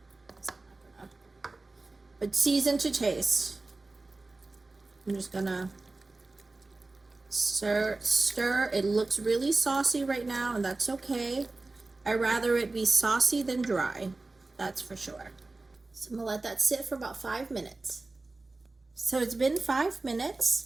thing. But season to taste. I'm just gonna stir. It looks really saucy right now, and that's okay. I'd rather it be saucy than dry, that's for sure. So I'm gonna let that sit for about 5 minutes. So it's been 5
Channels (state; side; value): quieter; left; 3.3 dB